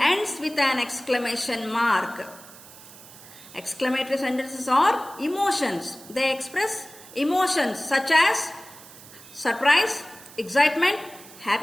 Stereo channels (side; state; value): right; noise; hiss, 19 dB below the sound